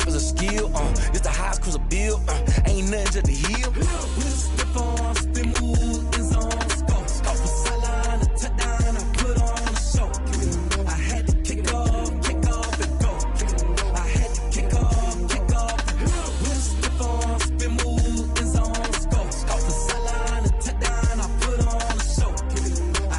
is a skill. It's the highest cruiser bill, ain't nothing to the heel. With a stiff arm, spin move, in zone, let's go. From sideline to touchdown, I put on a show. I had to kick off and go. I had to kick off and go. With a stiff arm, spin move, in zone, let's go. From sideline to touchdown, I put on a show. I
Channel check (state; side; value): identical; both; correlation 1.00